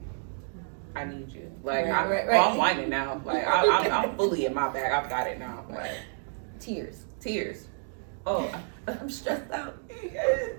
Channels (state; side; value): silent; left; 58 dB below the other